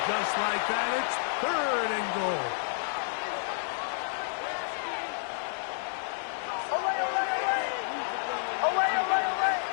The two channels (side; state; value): right; silent; digital silence